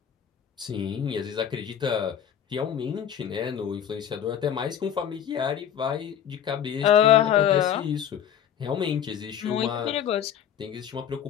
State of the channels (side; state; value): right; quieter; 9.3 dB